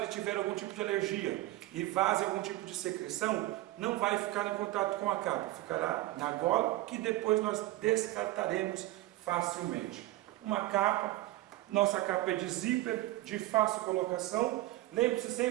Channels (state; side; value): quieter; left; 17.2 dB